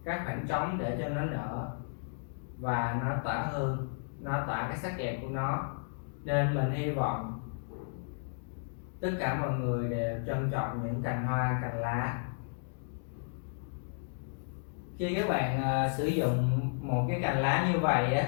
các khoảng trống để cho nó nở và nó tỏa hương, nó tỏa cái sắc đẹp của nó. Nên mình hy vọng tất cả mọi người đều trân trọng những cành hoa, cành lá. Khi các bạn sử dụng một cái cành lá như vậy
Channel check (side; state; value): right; silent; digital silence